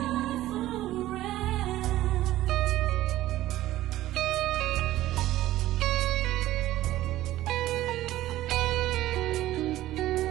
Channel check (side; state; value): left; quieter; 15.0 dB